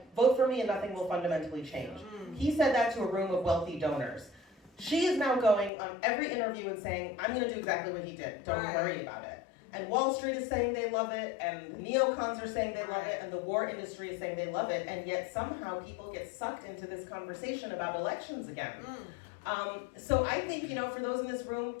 vote for me and nothing will fundamentally change. He said that to a room of wealthy donors. She is now going on every interview and saying, I'm gonna do exactly what he did, don't worry about it. And Wall Street is saying they love it, and the neocons are saying they love it, and the war industry is saying they love it, and yet somehow people get sucked into this conversation about elections again. So I think, you know, for those in this room,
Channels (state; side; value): drops out; right; at 5.7 s